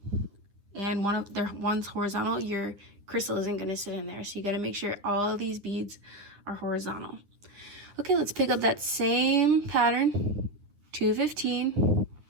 and one's horizontal, your crystal isn't going to sit in there. So you got to make sure all of these beads our horizontal. Okay, let's pick up that same pattern, 215,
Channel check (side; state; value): left; late; 9.8 ms